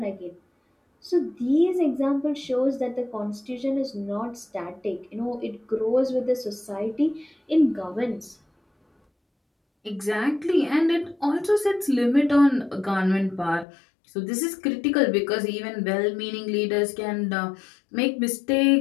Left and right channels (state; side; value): drops out; right; at 13.7 s